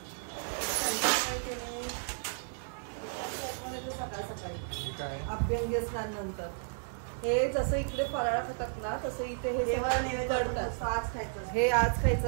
सकाळी अभ्यंगी स्नानानंतर हे जसं इकडे फराळ खातात ना तसं इथे हे करतात. आज खायचं. हे आज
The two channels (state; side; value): silent; left; digital silence